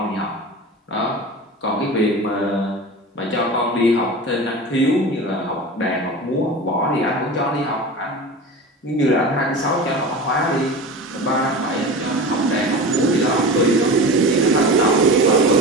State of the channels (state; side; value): normal; both; correlation 0.31